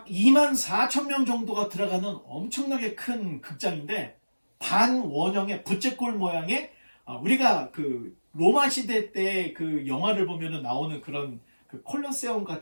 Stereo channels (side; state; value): both; inverted; correlation -1.00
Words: 2만 4천 명 정도가 들어가는 엄청나게 큰 극장인데 반원형의 부채꼴 모양의 우리가 그 로마 시대 때 그 영화를 보면은 나오는 그런 그 콜로세움